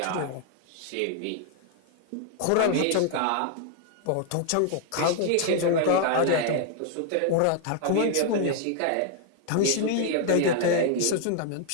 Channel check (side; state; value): both; different; correlation 0.00